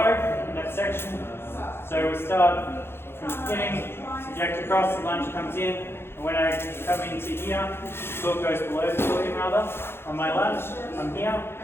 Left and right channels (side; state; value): right; late; 0.11 ms